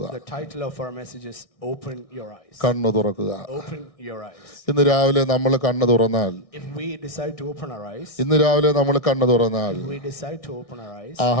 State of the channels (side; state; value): right; late; 1.6 ms